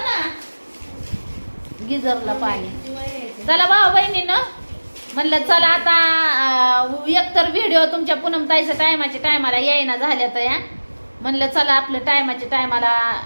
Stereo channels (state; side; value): inverted; both; correlation -1.00